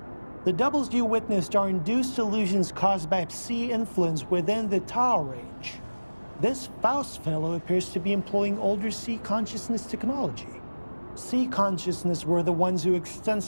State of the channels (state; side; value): inverted; both; correlation -1.00